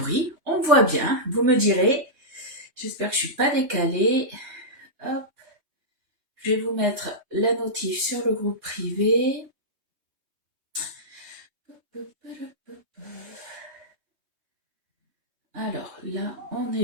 on voit bien, vous me direz. J'espère que je suis pas décalée. Hop, je vais vous mettre la notif sur le groupe privé. Alors là, on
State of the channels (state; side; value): late; left; 3.2 ms